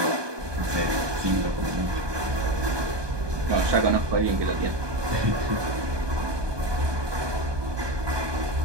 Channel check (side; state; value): left; late; 1.2 ms